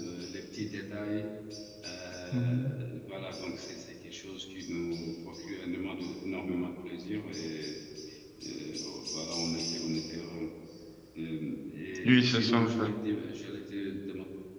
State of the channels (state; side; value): identical; both; correlation 1.00